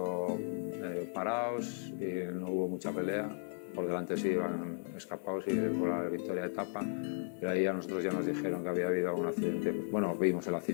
parados y no hubo mucha pelea. Por delante sí iban escapados y por la victoria de etapa, pero ahí a nosotros ya nos dijeron que había habido algún accidente. Bueno, vimos el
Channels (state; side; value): silent; right; 54 dB below the other